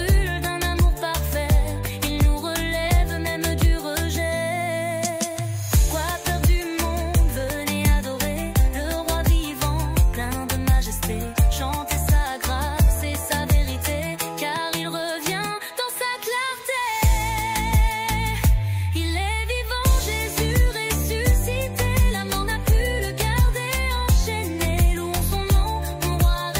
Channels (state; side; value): identical; both; correlation 1.00